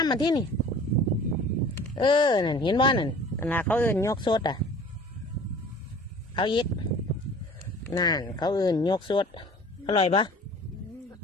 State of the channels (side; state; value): both; normal; correlation 0.46